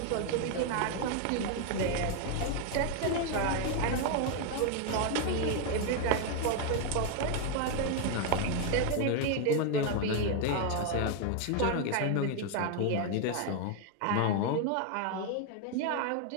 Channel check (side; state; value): both; different; correlation 0.01